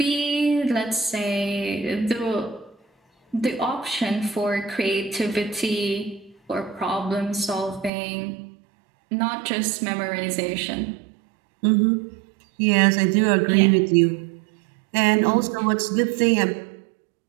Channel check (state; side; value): drops out; left; at 7.9 s